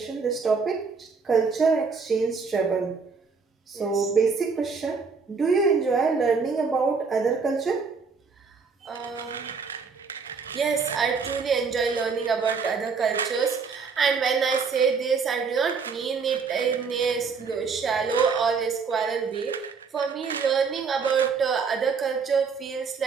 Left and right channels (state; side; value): quieter; left; 5.2 dB